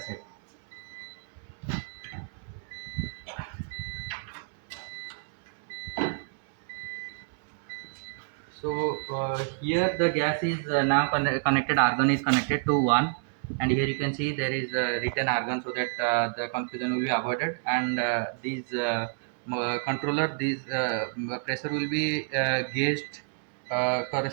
So here the gas is now connected. Argon is connected to 1, and here you can see there is written Argon, so that the confusion will be avoided. And these controller, these pressure will be gauged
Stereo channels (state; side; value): silent; left; 58 dB below the other